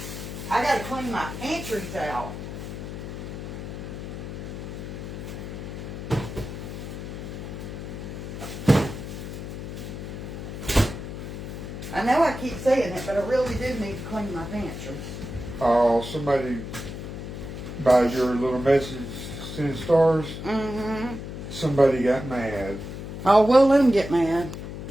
I gotta clean my pantries out. I know I keep saying it, but I really do need to clean my pantries. Oh, somebody by your little message sending stars. Mm-hmm. Somebody got mad. Oh, well, let them get mad.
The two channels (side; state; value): left; noise; hum, 8 dB below the sound